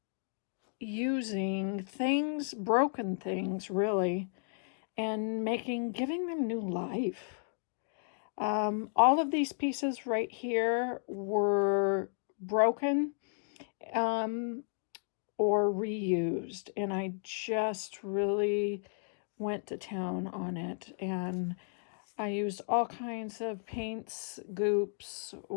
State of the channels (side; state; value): right; silent; digital silence